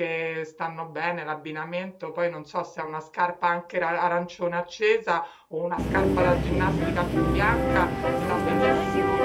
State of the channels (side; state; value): both; identical; correlation 1.00